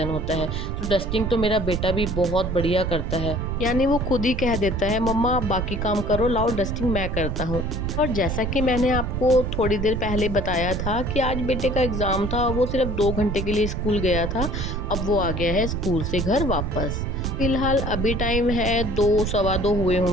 होता है, तो डस्टिंग तो मेरा बेटा भी बहुत बढ़िया करता है। यानी वो खुद ही कह देता है मम्मा आप बाकी काम करो, लाओ डस्टिंग मैं करता हूँ। और जैसा कि मैंने आपको थोड़ी देर पहले बताया था कि आज बेटे का एग्ज़ाम था, वो सिर्फ 2 घंटे के लिए स्कूल गया था, अब वो आ गया है स्कूल से घर वापस। फिलहाल अभी टाइम है 2 सवा 2 हुए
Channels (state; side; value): noise; right; rumble, 3 dB below the sound